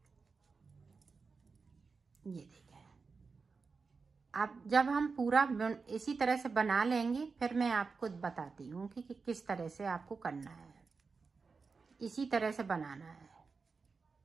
ये देखें, अब जब हम पूरा इसी तरह से बना लेंगे फिर मैं आपको बताती हूँ कि किस तरह से आपको करना है। इसी तरह से बनाना है।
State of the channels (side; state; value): left; quieter; 4.7 dB